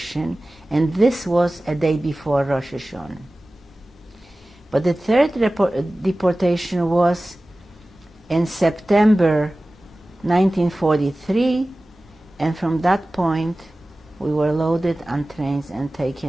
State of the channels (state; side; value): normal; both; correlation 0.97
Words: and this was a day before Rosh Hashanah. But the third deportation was in September 1943, and from that point we were loaded on trains and